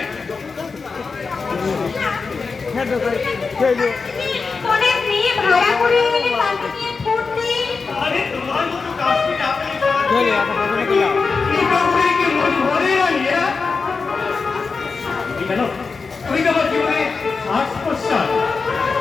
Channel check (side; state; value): right; quieter; 4.7 dB